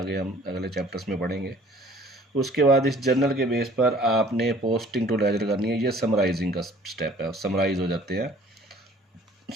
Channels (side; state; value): both; normal; correlation 0.53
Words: हम अगले चैप्टर्स में पढ़ेंगे। उसके बाद इस जर्नल के बेस पर आपने पोस्टिंग टू लेजर करनी है, ये समराइजिंग का स्टेप है, समराइज हो जाते हैं।